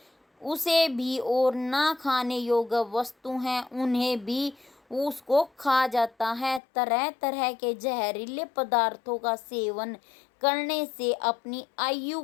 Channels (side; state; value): right; drops out; at 6.6 s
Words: उसे भी, और ना खाने योग्य वस्तु हैं उन्हें भी उसको खा जाता है। तरह तरह के जहरीले पदार्थों का सेवन करने से अपनी आयु